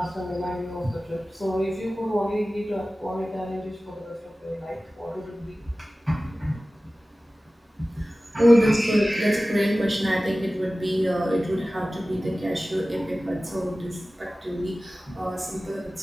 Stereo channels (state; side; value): normal; both; correlation 0.96